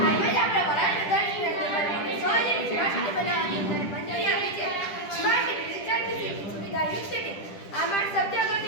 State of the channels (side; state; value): right; late; 10 ms